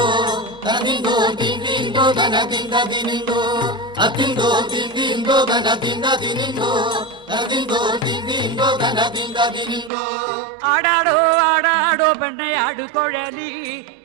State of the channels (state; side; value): drops out; left; at 9.9 s